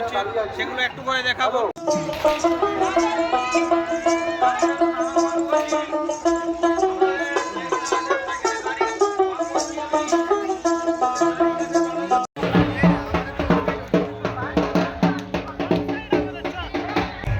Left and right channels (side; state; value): both; identical; correlation 1.00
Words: সেগুলো একটু করে দেখাবো।